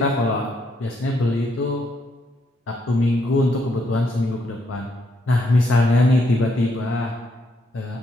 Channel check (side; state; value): both; normal; correlation 0.75